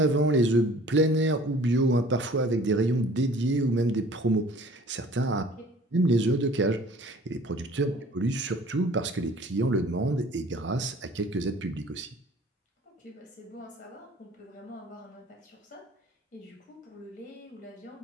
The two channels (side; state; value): both; normal; correlation 0.49